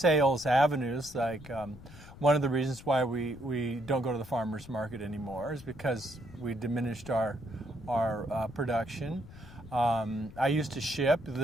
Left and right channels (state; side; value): noise; left; rumble, 17 dB below the sound